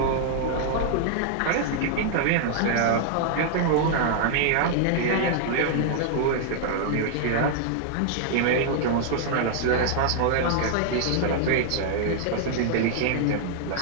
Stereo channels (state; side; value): different; both; correlation -0.01